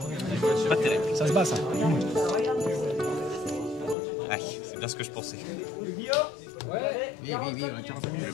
Pas terrible. Ça se bat ça. Ah, c'est bien ce que je pensais. Oui, on a 40 minutes.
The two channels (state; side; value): drops out; right; at 4.0 s